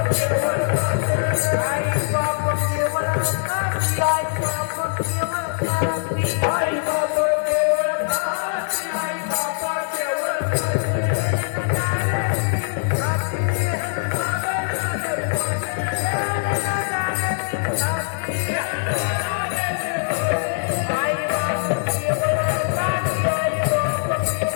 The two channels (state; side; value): silent; right; 64 dB below the other